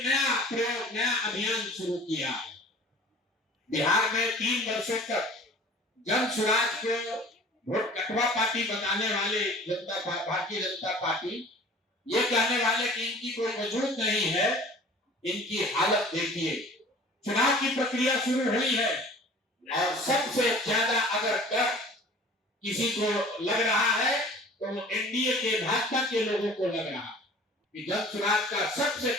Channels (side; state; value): both; normal; correlation 0.46